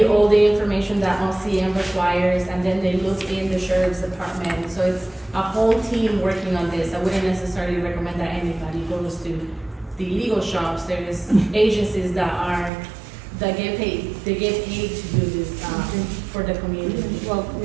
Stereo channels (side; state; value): left; drops out; at 12.7 s